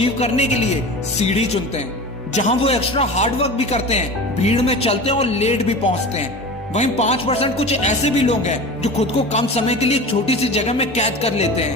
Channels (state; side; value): normal; both; correlation 0.33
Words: करने के लिए सीढ़ी चुनते हैं, जहां वो एक्स्ट्रा हार्डवर्क भी करते हैं, भीड़ में चलते हैं और लेट भी पहुंचते हैं। वहीं 5% कुछ ऐसे भी लोग हैं जो खुद को कम समय के लिए एक छोटी सी जगह में कैद कर लेते